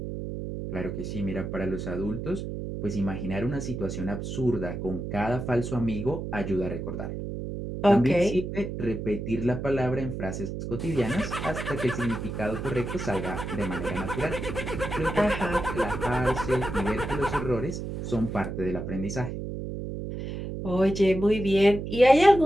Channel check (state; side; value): noise; right; hum, 6 dB below the sound